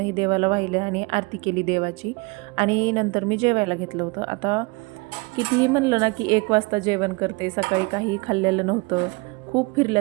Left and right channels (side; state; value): left; quieter; 26.6 dB